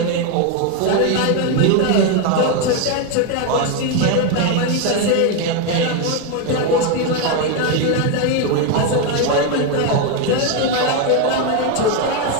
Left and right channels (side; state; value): both; different; correlation 0.02